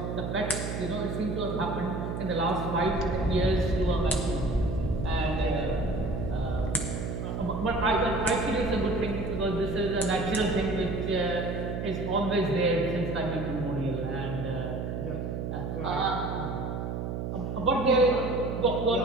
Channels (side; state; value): right; noise; hum, 3 dB below the sound